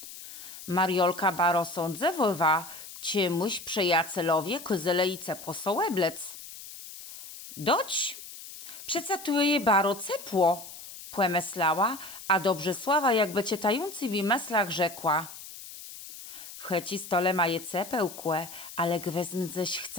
Mariolka baro sądzewowa, ciemuś przejacelowie kyzelejce posołeblec. Doć, przece tu je baro cepło, płemeslała, a Dobrzesława jakby cietający w meslach rzekła. W checi stole ma je cepełkłe, ale gwezm ześ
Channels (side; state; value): left; noise; hiss, 14 dB below the sound